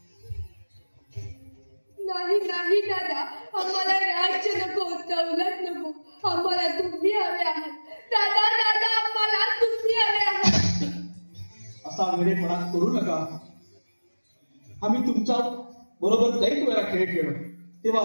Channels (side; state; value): both; inverted; correlation -1.00